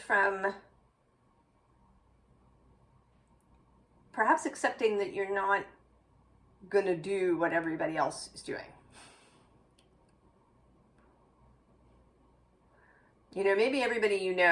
perhaps accepting that you're not going to do what everybody else is doing. Maybe everybody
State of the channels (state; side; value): identical; both; correlation 1.00